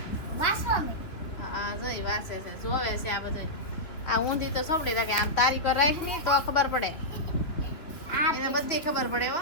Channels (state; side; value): late; right; 3.3 ms